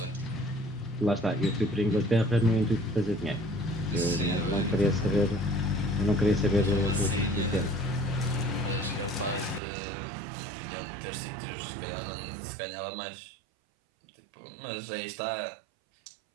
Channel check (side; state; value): left; drops out; at 9.6 s